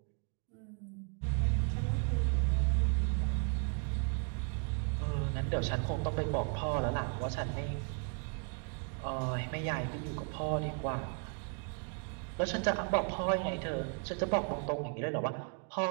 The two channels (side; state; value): left; quieter; 39.1 dB